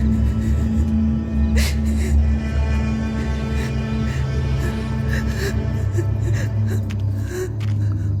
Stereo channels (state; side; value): identical; both; correlation 1.00